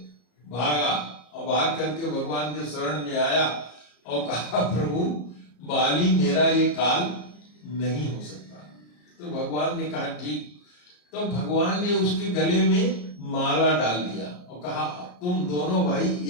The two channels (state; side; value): late; right; 34 ms